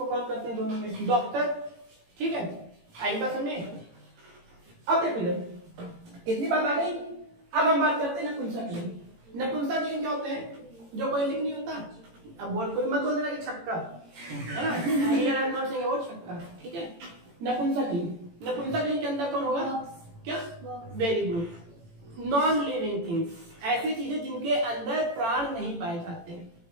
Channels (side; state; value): left; late; 18 ms